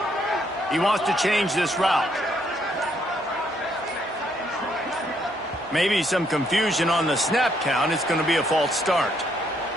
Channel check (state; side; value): normal; both; correlation 0.72